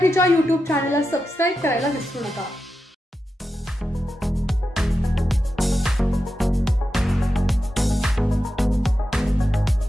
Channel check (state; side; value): normal; both; correlation 0.90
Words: YouTube चॅनलला सबस्क्राईब करायला विसरू नका।